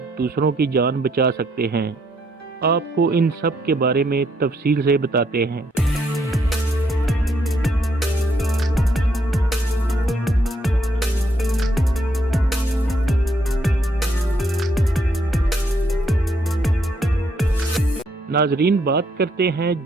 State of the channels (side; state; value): both; normal; correlation 0.72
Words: दूसरों की जान बचा सकते हैं। आपको इन सब के बारे में तफसील से बताते हैं। नाजरीन, बात करते हैं